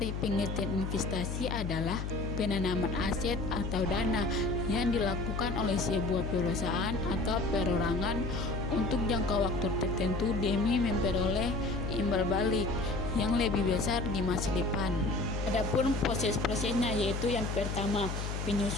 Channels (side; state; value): left; noise; hum, 4 dB below the sound